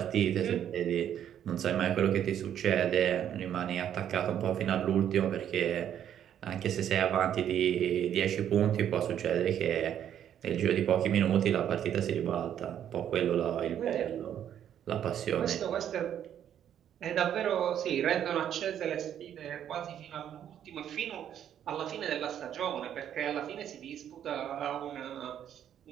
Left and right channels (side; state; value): left; quieter; 9.9 dB